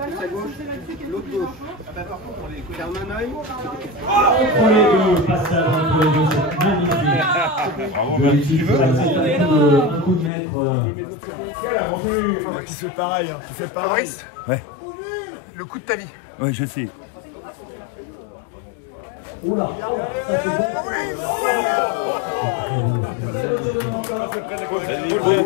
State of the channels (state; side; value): drops out; right; at 10.3 s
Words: L'autre gauche. Ferme un œil. Entre les deux, passage entre les deux, c'est magnifique. Tu veux? Un coup de maître. Tu fais pareil, hein. Maurice, Ouais. le coup de ta vie. Ouais, je sais. Oula, ça c'est